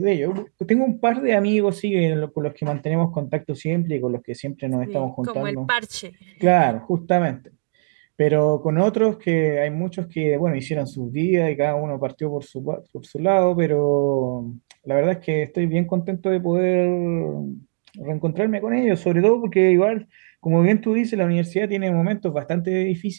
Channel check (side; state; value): left; silent; digital silence